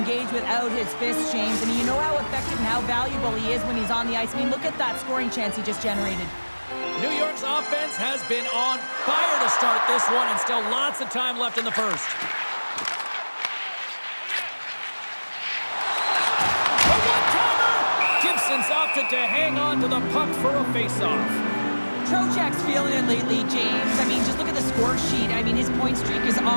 without his fists, James. I mean, you know how effective and how valuable he is when he's on the ice. I mean, look at that scoring chance he just generated. New York's offense has been on fire to start this one, and still lots of time left in the first. A one-timer! Gibson's opted to hang on to the puck for a face-off. Trocheck's feeling it lately, James. I mean, just look at the score sheet. I mean, his point streak is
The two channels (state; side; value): inverted; both; correlation -1.00